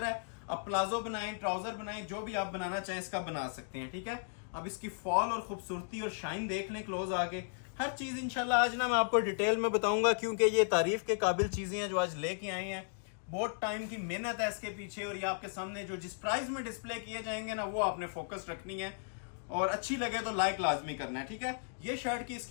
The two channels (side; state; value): right; silent; digital silence